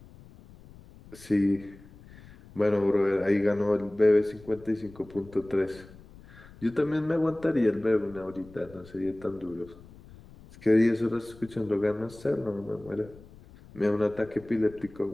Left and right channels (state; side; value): noise; left; rumble, 21 dB below the sound